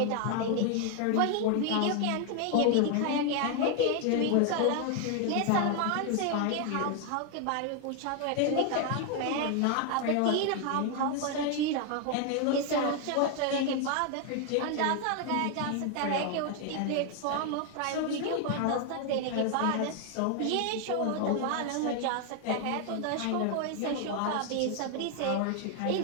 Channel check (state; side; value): different; both; correlation 0.01